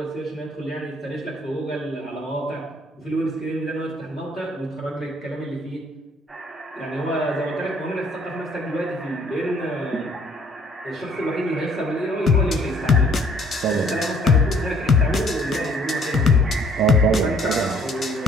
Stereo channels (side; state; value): both; normal; correlation 0.61